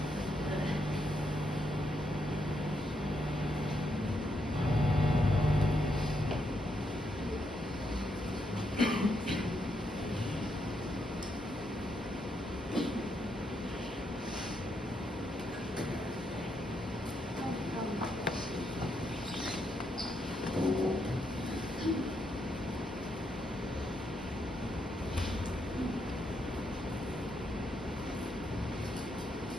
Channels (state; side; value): normal; both; correlation 0.79